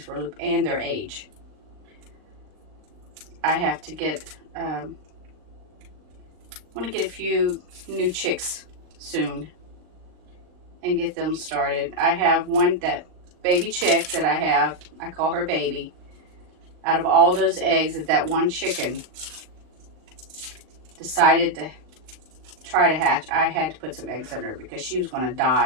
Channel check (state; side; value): late; left; 39 ms